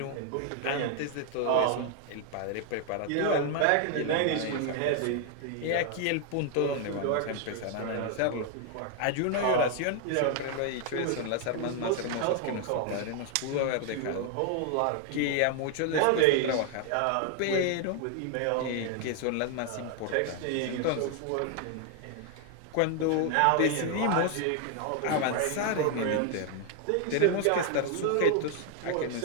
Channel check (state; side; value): different; both; correlation 0.00